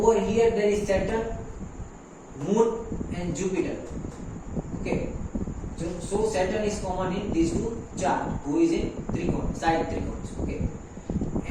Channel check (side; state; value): both; identical; correlation 1.00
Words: here there is Saturn, Moon and Jupiter. Okay, so Saturn is common in these two charts, who is in trigon, side trigons. Okay,